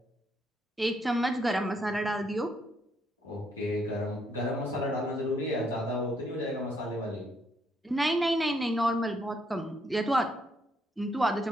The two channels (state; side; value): normal; both; correlation 0.73